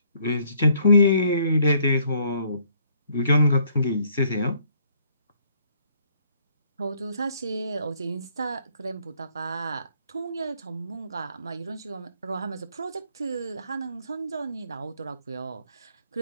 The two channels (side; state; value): both; inverted; correlation -0.66